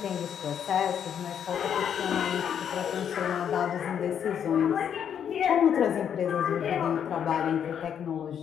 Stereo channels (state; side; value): quieter; right; 8.5 dB